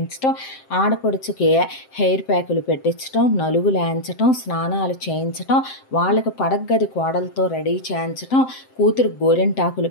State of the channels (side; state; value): right; late; 7.6 ms